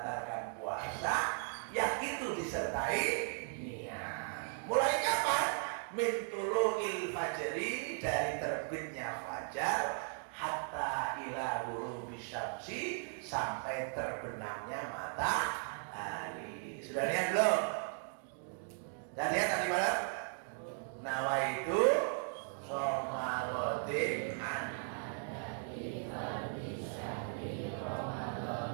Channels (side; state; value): left; silent; 53 dB below the other